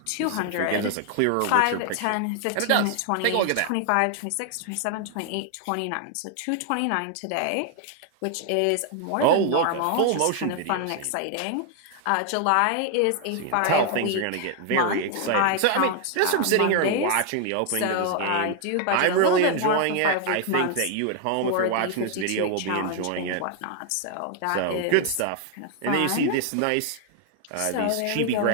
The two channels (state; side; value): different; both; correlation 0.00